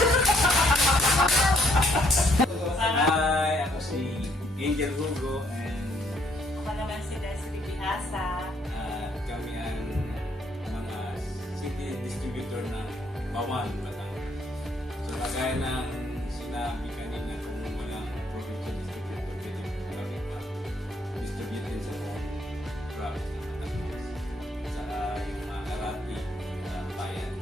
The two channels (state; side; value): normal; both; correlation 0.68